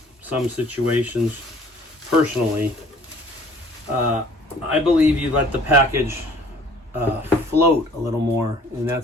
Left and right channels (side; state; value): both; normal; correlation 0.53